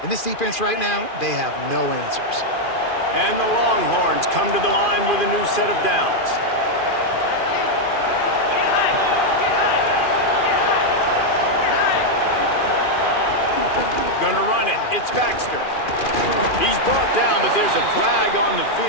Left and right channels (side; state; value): right; late; 2.4 ms